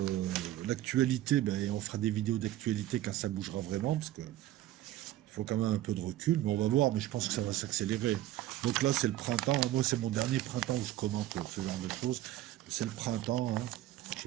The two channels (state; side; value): quieter; left; 14.4 dB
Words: l'actualité, ben, on fera des vidéos d'actualité quand ça bougera vraiment, parce que il faut quand même un peu de recul, mais on va voir, mais je pense que ça va s'accélérer. Donc là c'est le printemps, moi c'est mon dernier printemps où je commente ce genre de choses. C'est le printemps, hein. Je